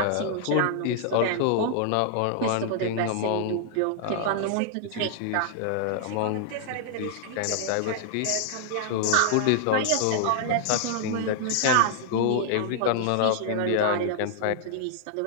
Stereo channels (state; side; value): different; both; correlation -0.01